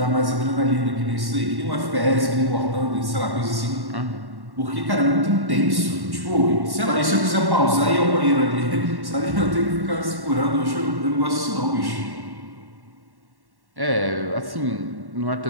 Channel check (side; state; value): left; late; 1.1 ms